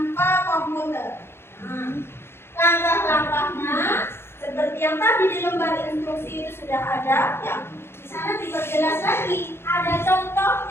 komputer. Nah, langkah-langkahnya seperti yang tadi di lembar instruksi itu sudah ada. Ya, di sana diperjelas lagi. Ada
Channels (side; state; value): right; late; 0.12 ms